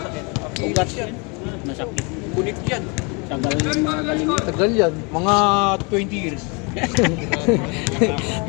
Ugat yan. Masakit. Kunik yan. Tagal yung mga galing. Tagal yan. Mga 20 years.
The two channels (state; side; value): quieter; right; 31.5 dB